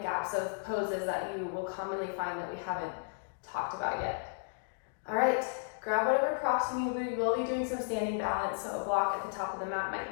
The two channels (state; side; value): silent; right; digital silence